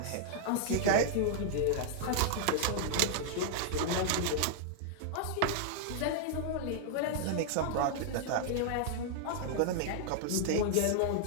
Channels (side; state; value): both; different; correlation -0.01